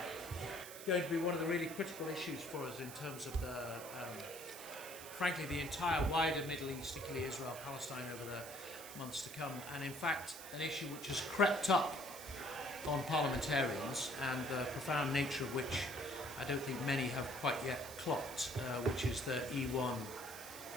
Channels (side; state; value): right; noise; hiss, 12 dB below the sound